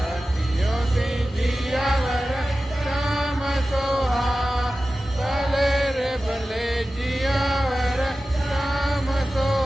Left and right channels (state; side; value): normal; both; correlation 0.95